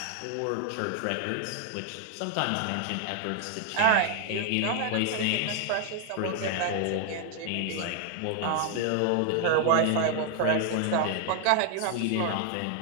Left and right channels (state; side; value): different; both; correlation 0.00